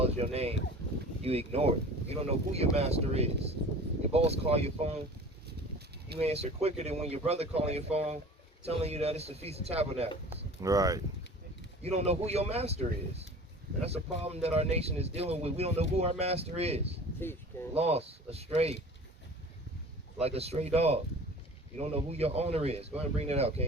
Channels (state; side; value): normal; both; correlation 0.42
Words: your name, you ignore it. You don't know who your master is. Your boss call your phone, you answer quicker than when your brother calling your phone, telling you that it's the Feast of Tabernacles. Right. You don't know who your master is. And that's a problem that our nation is dealing with. We don't know who our master is. Lost, astray, like a stray dog. You don't know who your owner is. Go ahead and bring that out,